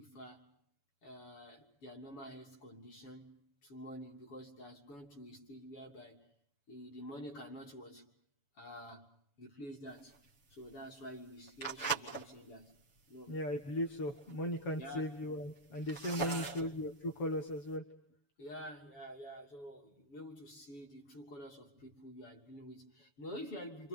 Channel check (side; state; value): right; late; 7.0 ms